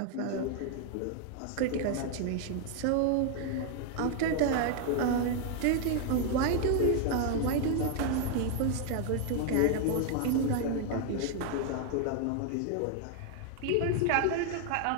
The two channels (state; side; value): different; both; correlation 0.00